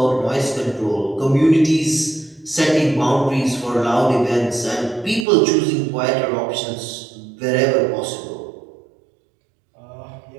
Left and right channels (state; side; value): drops out; left; at 5.2 s